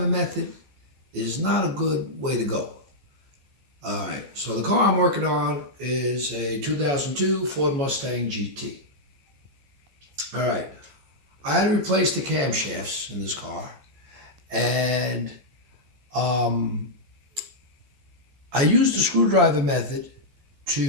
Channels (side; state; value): left; late; 14 ms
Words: method is not a good way to go. Alright, so the car I'm working on is a 2002 Ford Mustang GT. Alright, I had to replace the camshafts in this car, and I used the screwdriver method